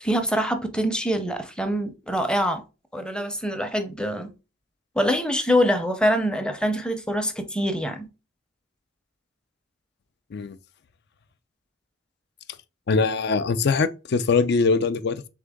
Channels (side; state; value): both; normal; correlation 0.51